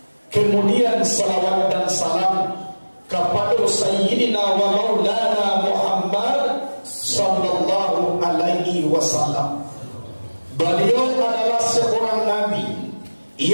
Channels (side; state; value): both; inverted; correlation -1.00